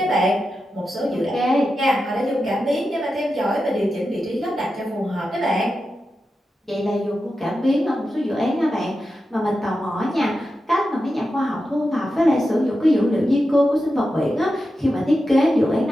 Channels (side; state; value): both; normal; correlation 0.90